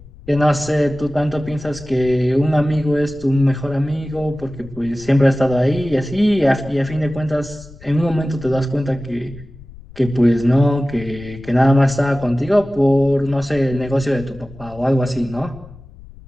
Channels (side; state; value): left; noise; rumble, 20 dB below the sound